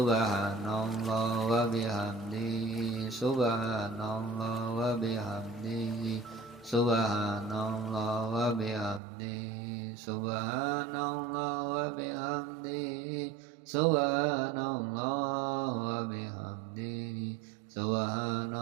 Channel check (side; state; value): left; drops out; at 9.0 s